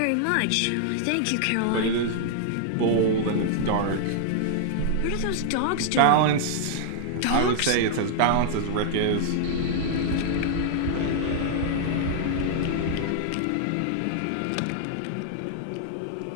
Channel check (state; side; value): different; both; correlation -0.01